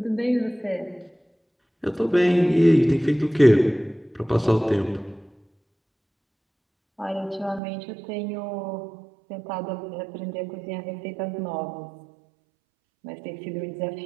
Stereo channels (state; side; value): drops out; left; at 7.6 s